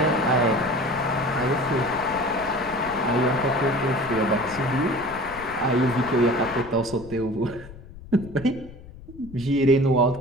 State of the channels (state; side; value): noise; left; rumble, 17 dB below the sound